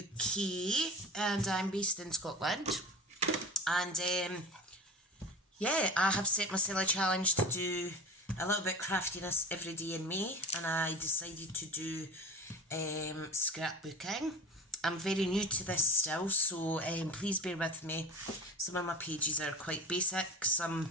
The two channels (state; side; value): normal; both; correlation 0.34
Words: UK, and I'm based in Scotland. And yeah, I have set myself a challenge to do a little bit craftiness every day in May, and I decided to do scrapbooking. I'm very new to this still, so please bear with me. Some of my pages are quite basic,